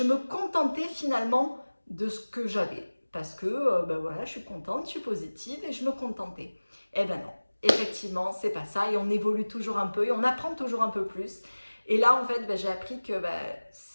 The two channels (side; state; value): both; inverted; correlation -1.00